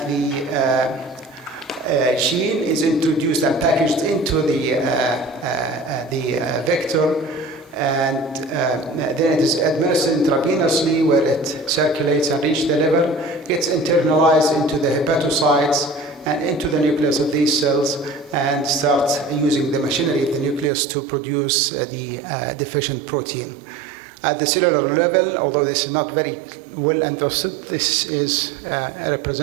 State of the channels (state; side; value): drops out; left; at 20.7 s